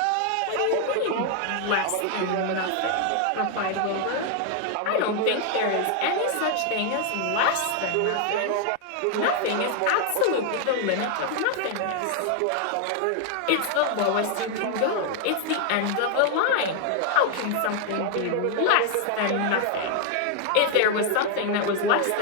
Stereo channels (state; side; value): different; both; correlation 0.00